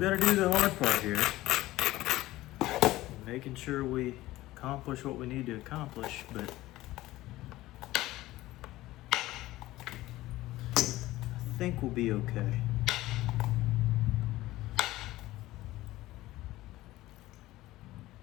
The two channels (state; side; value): quieter; right; 17.1 dB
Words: to do the hard part here. Making sure we accomplish what we need to accomplish, but I think we'll be okay.